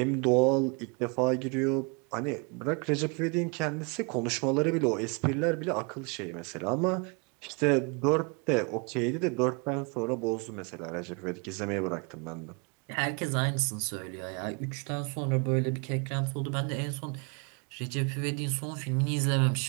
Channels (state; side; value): quieter; left; 33.3 dB